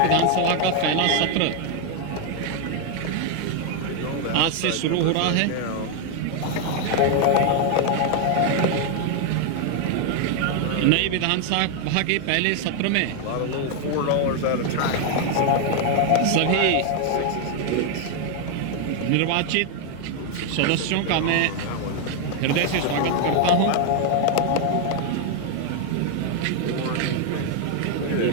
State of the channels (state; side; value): different; both; correlation 0.01